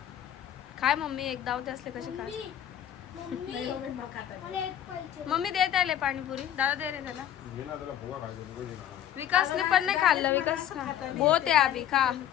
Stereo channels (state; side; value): quieter; right; 10.8 dB